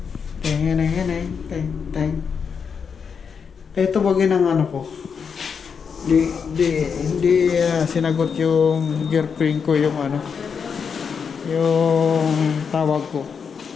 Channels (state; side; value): quieter; right; 6.3 dB